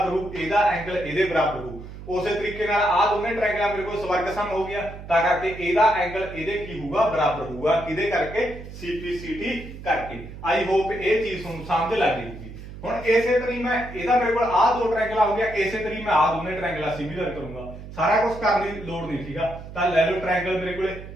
ਹੋਊ, ਇਹਦਾ ਐਂਗਲ ਇਹਦੇ ਬਰਾਬਰ ਹੋਊ। ਉਸੇ ਤਰੀਕੇ ਨਾਲ ਆ ਦੋਨੇ ਟ੍ਰਾਇੰਗਲਾਂ ਮੇਰੇ ਕੋਲ ਸਵਰਗ ਸਮ ਹੋ ਗਿਆ, ਤਾਂ ਕਰਕੇ ਇਹਦਾ ਐਂਗਲ ਇਹਦੇ ਕੀ ਹੋਊਗਾ, ਬਰਾਬਰ ਹੋਊਗਾ। ਕਿਹਦੇ ਕਰਕੇ? CPCT ਕਰਕੇ। ਆਈ ਹੋਪ ਇਹ ਚੀਜ਼ ਤੁਹਾਨੂੰ ਸਮਝ ਲੱਗ ਗਈ। ਹੁਣ ਇਸੇ ਤਰੀਕੇ ਮੈਂ ਇਹਦਾ ਮੇਰੇ ਕੋਲ ਆ ਦੋ ਟ੍ਰਾਇੰਗਲ ਹੋ ਗਿਆ, ਇਸੇ ਤਰੀਕੇ ਮੈਂ ਆ ਦੋਨੇ ਟ੍ਰਾਇੰਗਲਾਂ ਸਿਮਿਲਰ ਕਰੂੰਗਾ। ਸਾਰਾ ਕੁਝ ਕਰਨ ਦੀ ਲੋੜ ਨਹੀਂ, ਠੀਕ ਆ। ਤਾਂ ਲੈ ਲਓ ਟ੍ਰਾਇੰਗਲ ਮੇਰੇ ਕੋਲੇ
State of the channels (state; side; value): noise; right; hum, 13 dB below the sound